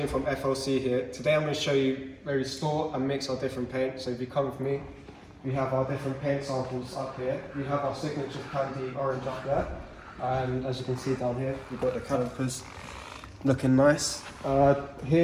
from FLC here. Today I'm going to show you where we store and mix our different paint. So if you come with me, we have our different paint samples up here. We have our signature candy orange up there. And as you can see down here, we've got the calipers looking nice.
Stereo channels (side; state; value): both; identical; correlation 1.00